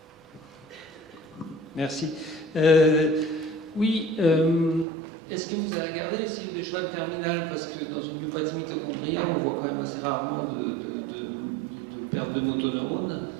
Merci. Oui, est-ce que vous avez regardé les cellules de Schwann terminales? Parce que dans une myopathie mitochondriale, on voit quand même assez rarement de perte de motoneurones.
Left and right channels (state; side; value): drops out; left; at 4.9 s